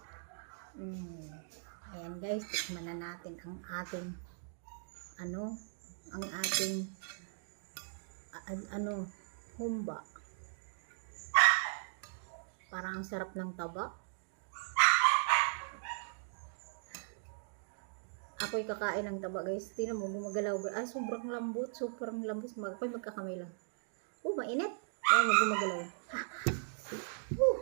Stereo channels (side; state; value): left; silent; digital silence